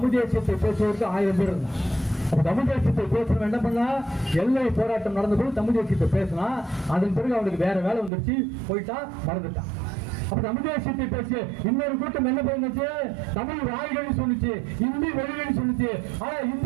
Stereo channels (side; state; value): left; drops out; at 8.1 s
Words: தேசியத்தை பேசுவதற்கு 1000 பேர் இருந்தாங்க. தமிழ் தேசியத்தை பேசணும் என்ன பண்ணா, எல்லை போராட்டம் நடந்த போது தமிழ் தேசியத்தை பேசினா, அதன் பிறகு அவனுக்கு வேற வேலை வந்துருச்சு, போயிட்டா, மறந்துட்டான். அப்ப தமிழ் தேசியத்தை பேசிய இன்னொரு கூட்டம் என்ன பண்ணுச்சு, தமிழ் வாய்கள் சொல்லிச்சு, இந்தி மொழிகள் சொல்லிச்சு. ஆனா